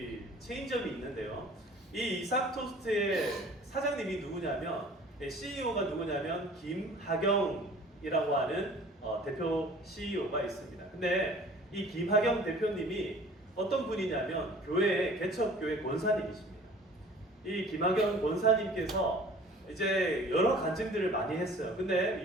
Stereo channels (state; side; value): normal; both; correlation 0.48